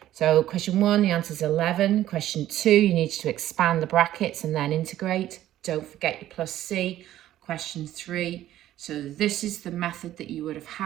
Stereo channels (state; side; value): quieter; left; 13.2 dB